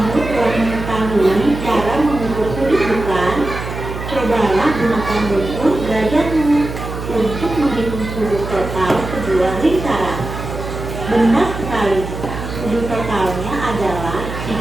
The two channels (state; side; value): noise; right; hum, 8 dB below the sound